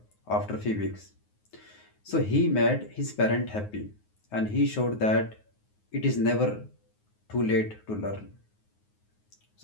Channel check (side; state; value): right; late; 9.5 ms